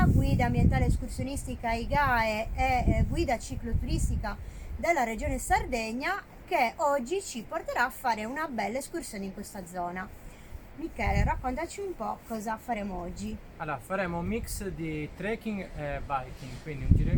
guida ambientale escursionistica IGAE e guida cicloturistica della regione Sardegna, che oggi ci porterà a fare una bella escursione in questa zona. Michele, raccontaci un po' cosa faremo oggi. Allora, faremo un mix di trekking e biking, quindi un giro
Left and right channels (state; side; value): identical; both; correlation 1.00